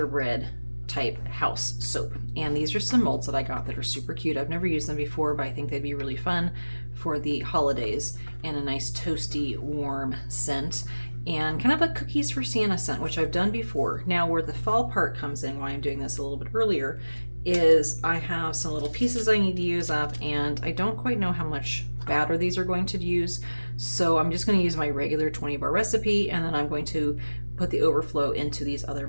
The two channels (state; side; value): inverted; both; correlation -1.00